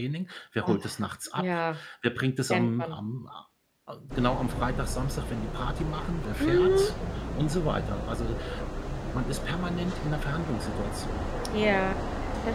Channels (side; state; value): both; identical; correlation 1.00